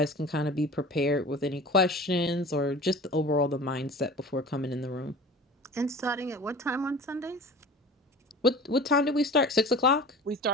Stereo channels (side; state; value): both; normal; correlation 0.39